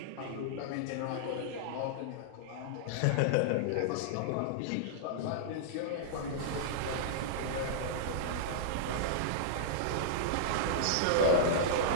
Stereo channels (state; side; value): different; both; correlation -0.02